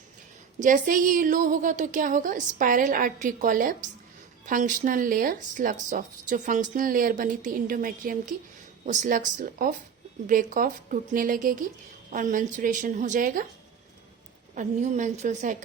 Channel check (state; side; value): quieter; left; 6.9 dB